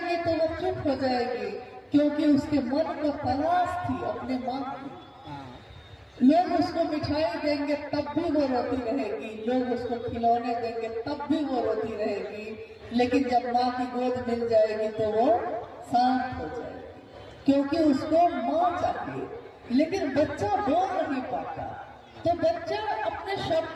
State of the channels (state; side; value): identical; both; correlation 1.00